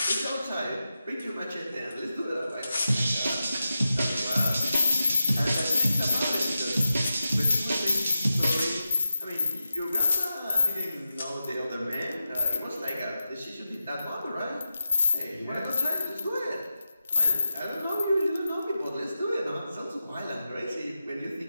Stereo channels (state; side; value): inverted; both; correlation -0.90